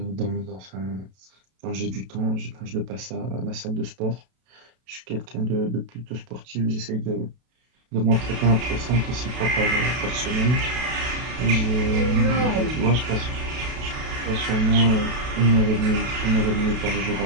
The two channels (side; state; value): left; late; 32 ms